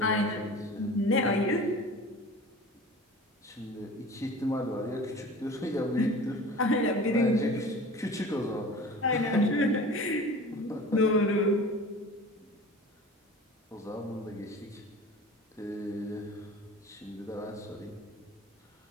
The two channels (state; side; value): normal; both; correlation 0.39